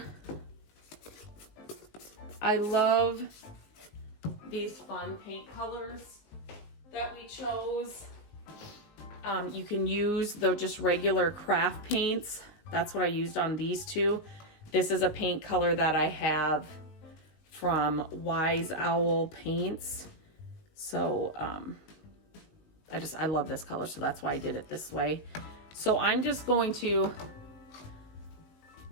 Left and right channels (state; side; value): late; right; 19 ms